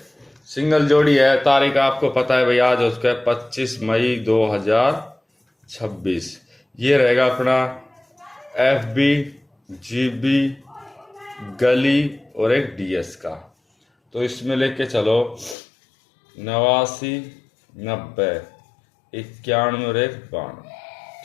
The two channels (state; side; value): drops out; right; at 15.6 s